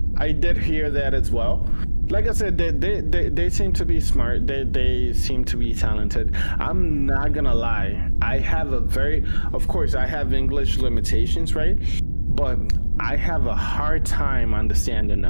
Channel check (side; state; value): both; inverted; correlation -1.00